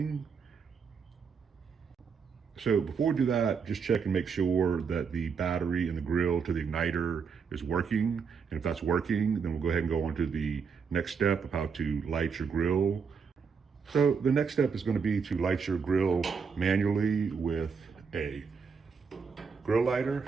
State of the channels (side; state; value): left; quieter; 5.9 dB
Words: So before we do that, just check and make sure that the battery in the grill to the igniter is working. And if that's working, then we'll go ahead and go on to the next step of how to light your grill. So the next step is going to be to light your grill manually with a grill lighter,